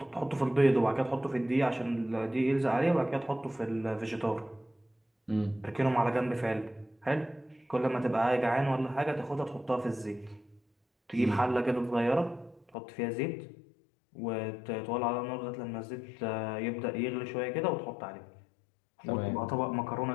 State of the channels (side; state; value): right; drops out; at 12.7 s